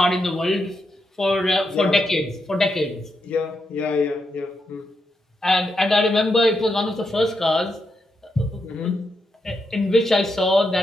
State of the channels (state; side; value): normal; both; correlation 0.83